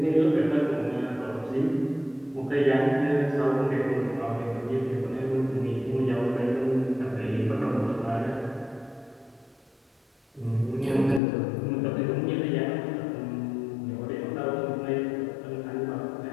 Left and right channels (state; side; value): drops out; right; at 11.2 s